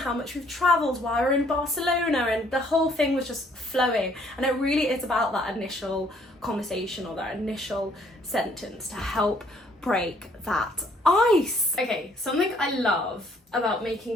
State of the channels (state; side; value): normal; both; correlation 0.63